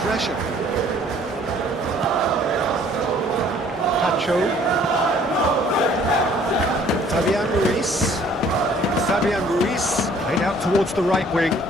Pacho. Fabian Ruiz. Laid out towards the right wing.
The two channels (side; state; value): both; normal; correlation 0.57